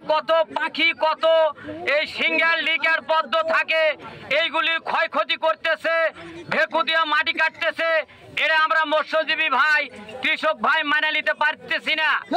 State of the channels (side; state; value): both; identical; correlation 1.00